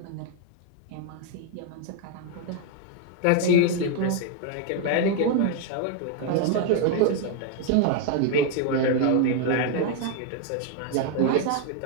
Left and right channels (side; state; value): both; different; correlation 0.01